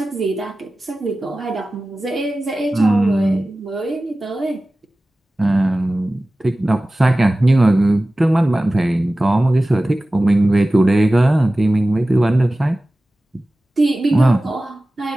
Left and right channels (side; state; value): both; normal; correlation 0.96